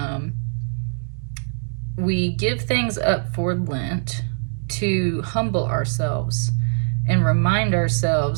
We give things up for Lent to humble ourselves and remind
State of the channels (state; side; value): silent; left; 64 dB below the other